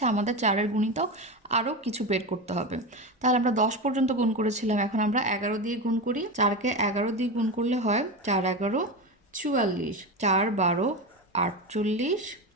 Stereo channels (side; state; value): both; normal; correlation 0.20